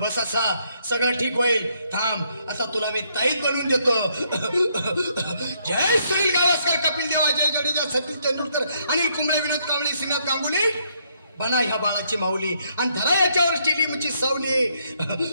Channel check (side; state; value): both; inverted; correlation -0.72